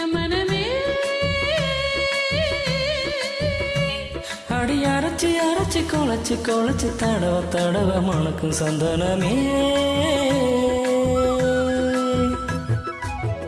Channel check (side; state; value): both; identical; correlation 1.00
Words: என் மனமே. அடி அரைச்சி அரைச்சி குழச்சி குழச்சி தடவ தடவ மணக்கும் சந்தனமே.